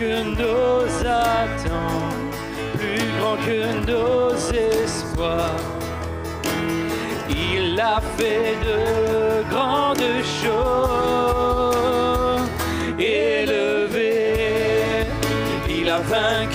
nos attentes, plus grand que nos espoirs. Il a fait de grandes choses, élevé, il a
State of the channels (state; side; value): identical; both; correlation 1.00